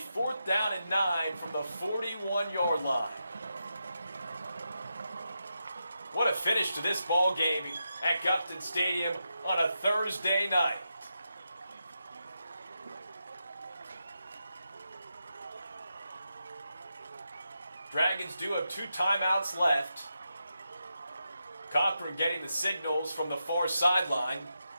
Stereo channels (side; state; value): both; inverted; correlation -0.87